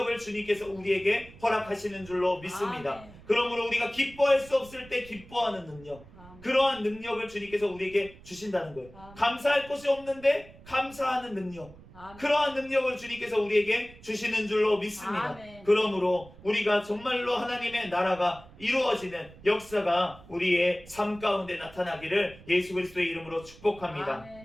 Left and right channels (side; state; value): right; noise; rumble, 21 dB below the sound